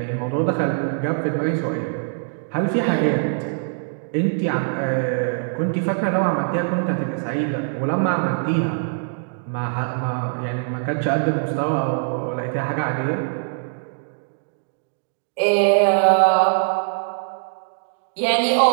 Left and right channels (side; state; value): left; silent; digital silence